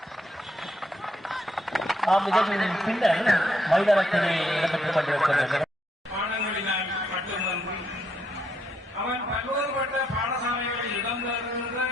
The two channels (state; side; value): normal; both; correlation 0.75